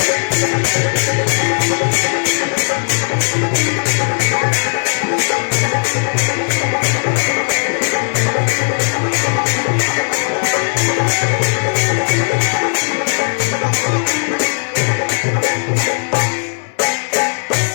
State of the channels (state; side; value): silent; right; 60 dB below the other